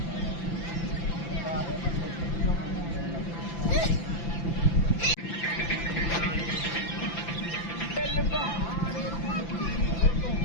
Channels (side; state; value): right; late; 5.9 ms